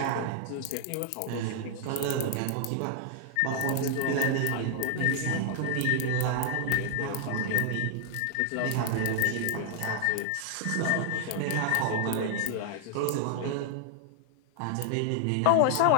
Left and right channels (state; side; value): different; both; correlation 0.00